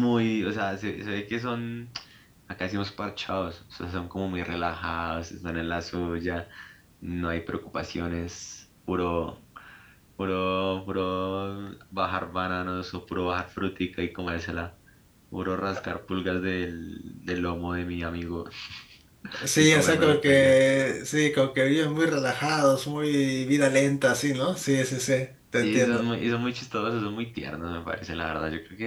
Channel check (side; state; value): both; identical; correlation 1.00